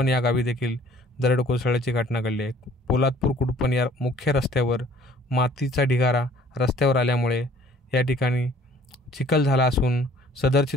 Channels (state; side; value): normal; both; correlation 0.55